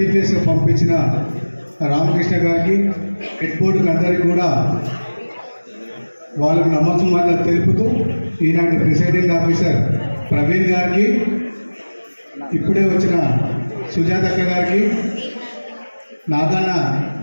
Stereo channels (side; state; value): both; inverted; correlation -1.00